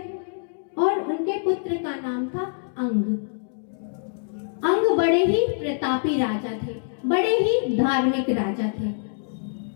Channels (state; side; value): silent; right; digital silence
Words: और उनके पुत्र का नाम था अंग। अंग बड़े ही प्रतापी राजा थे, बड़े ही धार्मिक राजा थे।